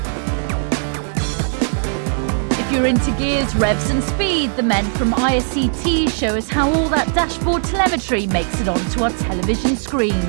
If you're into gears, revs and speed, the men from ISCT show us how all that dashboard telemetry makes it onto our television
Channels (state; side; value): silent; left; digital silence